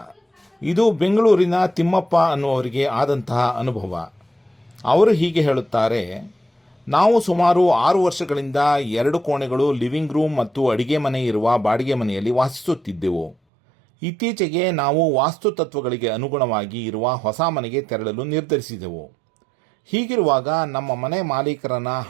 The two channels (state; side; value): drops out; left; at 13.4 s